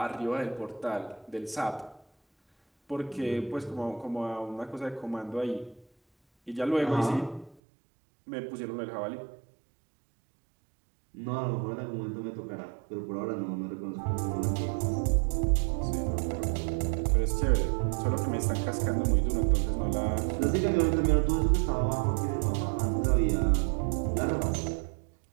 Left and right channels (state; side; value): drops out; left; at 7.6 s